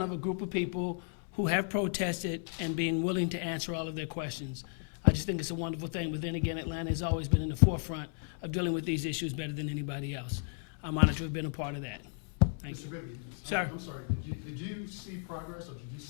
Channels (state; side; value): silent; right; 55 dB below the other